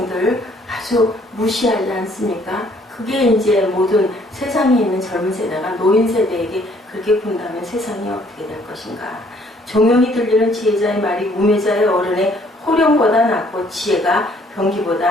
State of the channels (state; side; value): normal; both; correlation 0.62